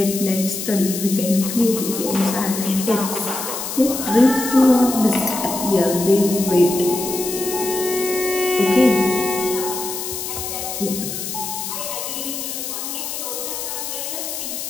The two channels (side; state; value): left; noise; hiss, 5 dB below the sound